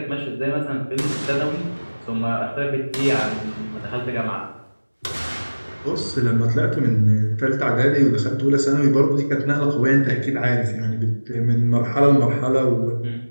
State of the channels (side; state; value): both; inverted; correlation -1.00